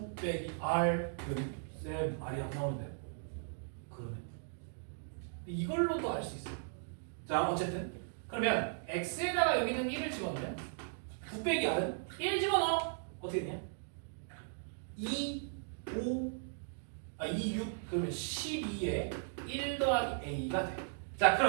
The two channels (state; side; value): silent; left; digital silence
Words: 빼기 R은 쌤 R이 안 나오는데. 그러면 이걸로도 알 수 있어. 자, 어쨌든 그러면 X에다가 여기는 1을 집어넣으면 9 빼기 R은 1 집어넣어. 어떻게 되냐? 2, 6 그러면 12에 1 더하기 A가 돼. 자,